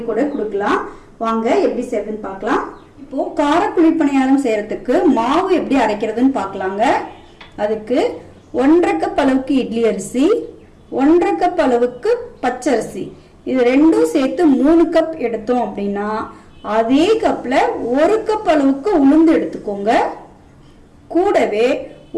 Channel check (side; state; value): both; identical; correlation 1.00